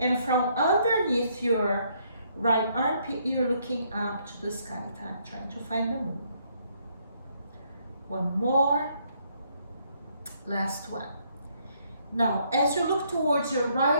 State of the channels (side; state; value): both; inverted; correlation -0.70